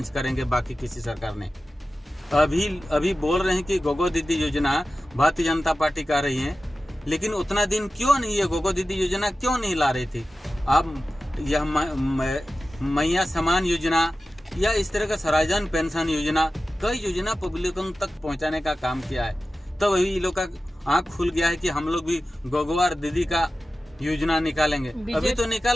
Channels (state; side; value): normal; both; correlation 0.94